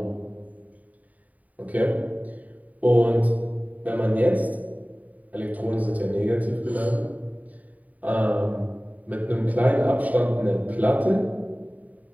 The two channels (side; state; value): left; late; 0.072 ms